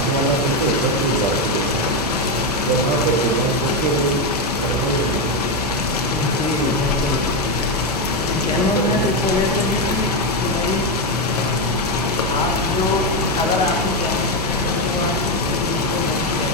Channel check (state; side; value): normal; both; correlation 0.08